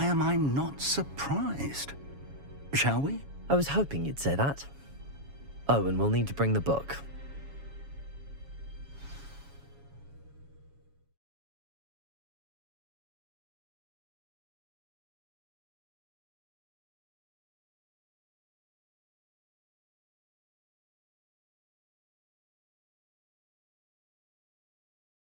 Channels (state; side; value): late; left; 7.2 ms